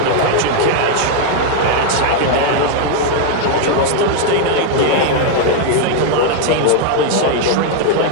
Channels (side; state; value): both; different; correlation 0.00